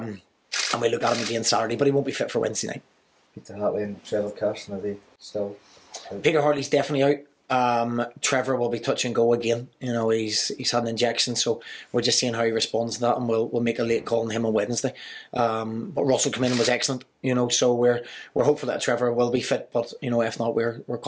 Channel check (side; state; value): both; identical; correlation 1.00